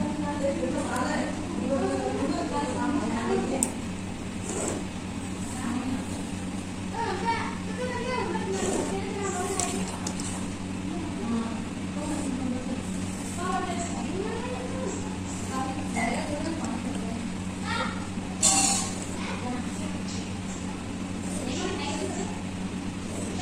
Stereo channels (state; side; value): identical; both; correlation 1.00